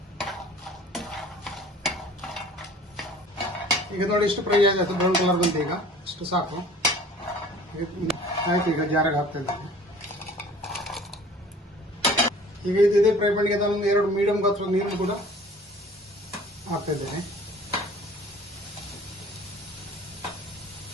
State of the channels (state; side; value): normal; both; correlation 0.48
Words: ಈಗ ನೋಡಿ ಇಷ್ಟು ಫ್ರೈ ಆಯ್ತು, ಬ್ರೌನ್ ಕಲರ್ ಬಂತು. ಈಗ ಇಷ್ಟು ಸಾಕು ಆಯ್ತು. ಈಗ ಜಾರಾಗ ಹಾಕ್ತಾ ಇದ್ದೇನೆ. ಈಗ ಇದೇ ಫ್ರೈ ಪ್ಯಾನ್ಗೆ ನಾನು 2 ಮೀಡಿಯಂ ಗಾತ್ರದ ನೀರು ಕೂಡ ಹಾಕ್ತಾ ಇದ್ದೇನೆ.